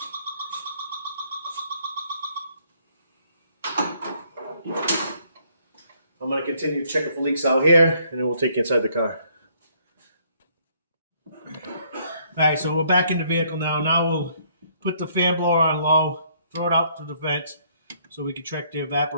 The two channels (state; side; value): inverted; both; correlation -0.66